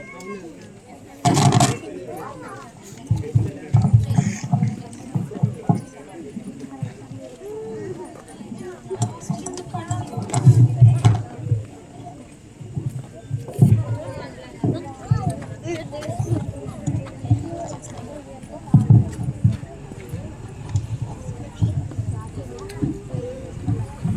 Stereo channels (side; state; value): both; identical; correlation 1.00